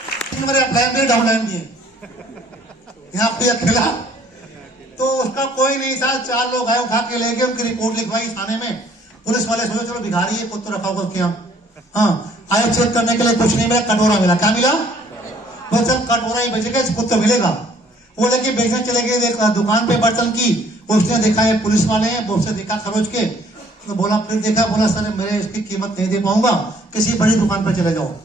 प्लान भी डाउन लाइन दिए यहाँ पे अकेला। तो उसका कोई नहीं था। 4 लोग आए, उठा के ले गए, उनकी रिपोर्ट लिखवाई थाने में। पुलिस वाले सोचे चलो भिखारी है, कुछ तो रखा होगा क्या। हाँ, आए चेक करने के लिए, कुछ नहीं मिला, कटोरा मिला। क्या मिला? वो चल कटोरा ही बेचेगा, कुछ तो मिलेगा। वो लेके बेचने चले गए दुकान पे बर्तन की। उसने देखा है पुलिस वाले हैं, वो उससे देखा खरोच के, तो बोला, फिर देखा, बोला सर मेरे इसकी कीमत नहीं दे पाऊंगा, किसी बड़ी दुकान पर चले जाओ।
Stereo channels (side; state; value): both; normal; correlation 0.60